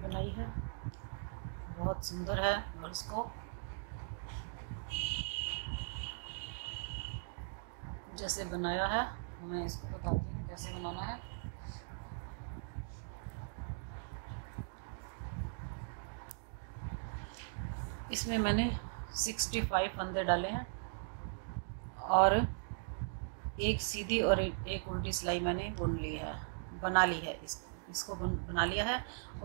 है, बहुत सुंदर है। और इसको जैसे बनाया है मैं इसको बताती हूँ कैसे बनाना है। इसमें मैंने 65 फंदे डाले हैं और एक सीधी और एक उल्टी सिलाई मैंने बना ली है। इसको बना लिया है।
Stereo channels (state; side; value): silent; left; digital silence